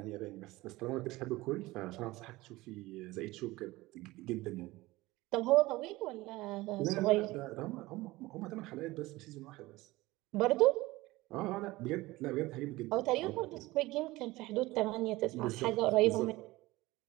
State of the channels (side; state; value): left; quieter; 19.6 dB